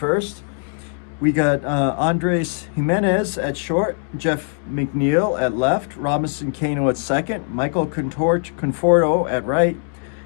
we got Andres Jimenez at short, Jeff McNeil at left, Robinson Cano at second, Michael Conforto at right,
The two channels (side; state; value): right; silent; 65 dB below the other